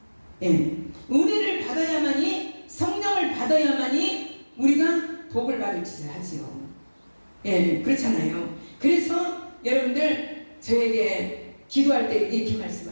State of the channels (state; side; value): inverted; both; correlation -1.00